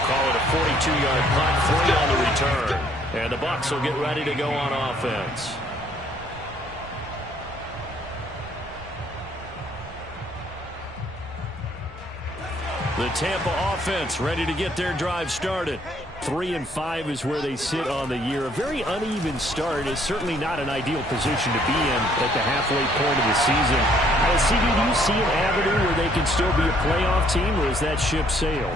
call it a 42-yard punt, 3 on the return. And the Bucs will get ready to go on offense. The Tampa offense ready to get their drive started. 3-5 is where they sit on the year. A very uneven start is certainly not an ideal position to be in at the halfway point of the season. CD, do you see an avenue where they can still be a playoff team, or is that ship sailed?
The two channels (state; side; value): normal; both; correlation 0.64